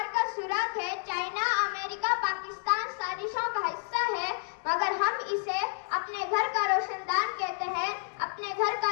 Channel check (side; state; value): right; silent; 58 dB below the other